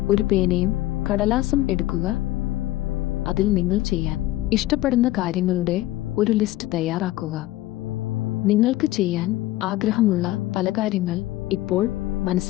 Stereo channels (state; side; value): quieter; right; 16.8 dB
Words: ഒരു പേനയും കടലാസും എടുക്കുക. അതിൽ നിങ്ങൾ ചെയ്യാൻ ഇഷ്ടപ്പെടുന്ന കാര്യങ്ങളുടെ ഒരു ലിസ്റ്റ് തയ്യാറാക്കുക. നിങ്ങൾക്ക് ചെയ്യാൻ ആഗ്രഹമുള്ള പല കാര്യങ്ങൾ ഇപ്പോൾ